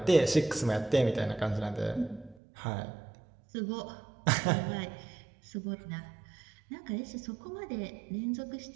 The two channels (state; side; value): drops out; left; at 2.4 s